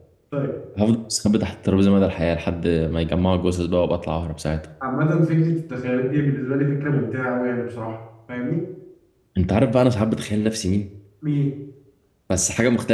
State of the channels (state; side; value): identical; both; correlation 1.00